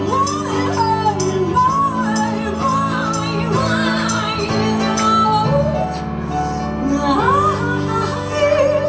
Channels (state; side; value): identical; both; correlation 1.00